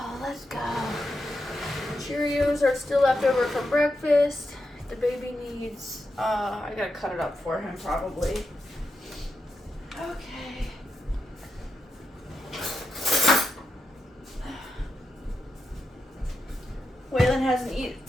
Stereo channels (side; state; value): both; normal; correlation 0.86